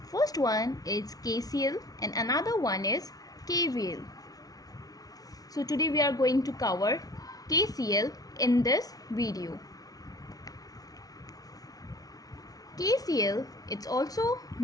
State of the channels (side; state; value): right; late; 0.18 ms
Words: First one is KCL and another one is KVL. So today we are going to cover KCL in this video. KCL, it's also